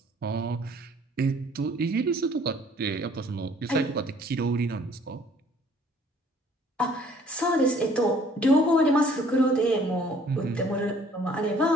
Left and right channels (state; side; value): normal; both; correlation 0.57